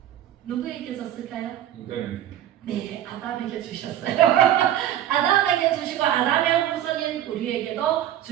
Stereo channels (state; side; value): quieter; left; 11.8 dB